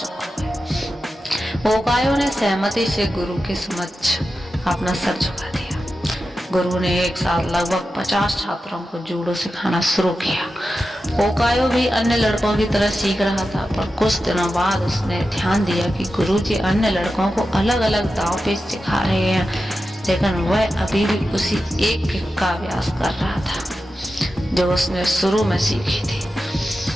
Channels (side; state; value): both; normal; correlation 0.91